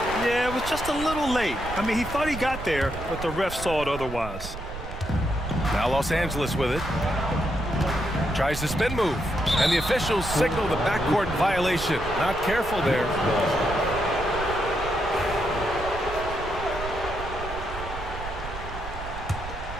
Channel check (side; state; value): right; noise; rumble, 9 dB below the sound